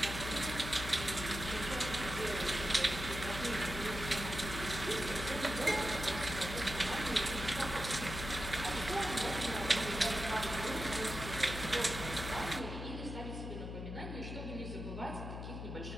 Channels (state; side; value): noise; left; hum, 7 dB below the sound